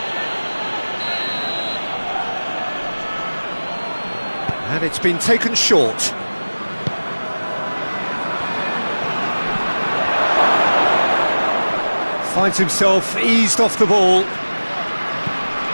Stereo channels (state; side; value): inverted; both; correlation -1.00